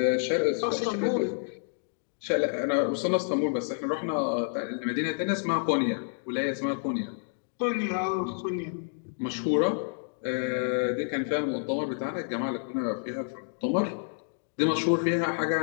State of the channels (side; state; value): right; silent; digital silence